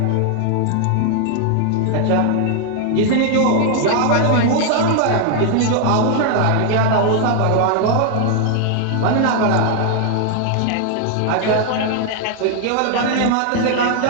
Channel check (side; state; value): both; different; correlation 0.00